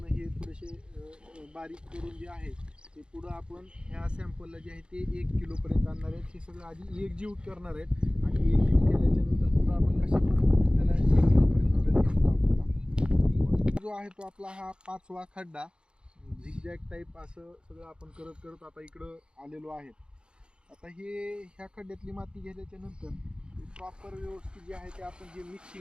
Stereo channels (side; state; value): left; late; 0.052 ms